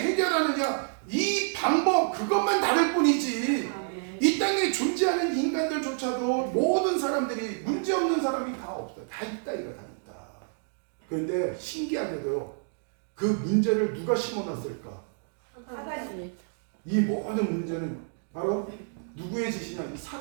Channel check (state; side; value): silent; left; digital silence